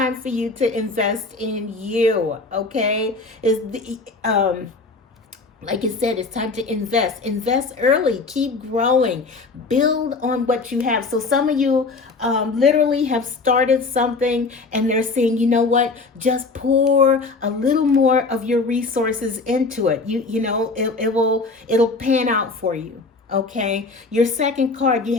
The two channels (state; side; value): quieter; right; 3.9 dB